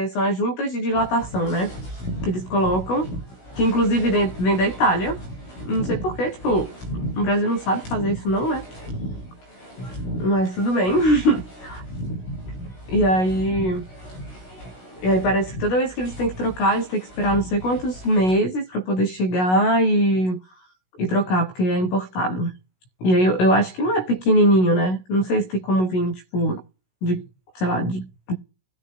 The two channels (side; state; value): right; late; 16 ms